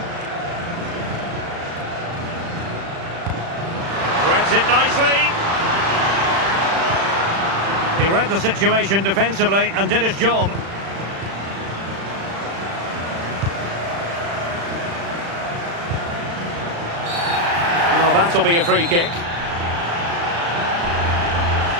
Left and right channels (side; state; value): left; late; 35 ms